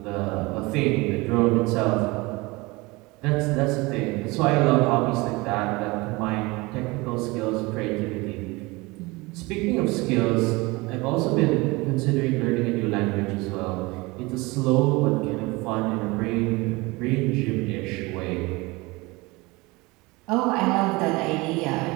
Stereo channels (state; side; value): quieter; left; 23.7 dB